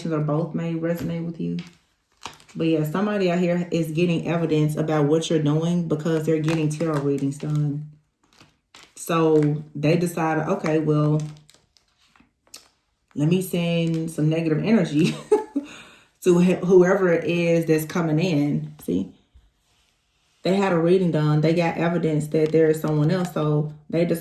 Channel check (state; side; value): identical; both; correlation 1.00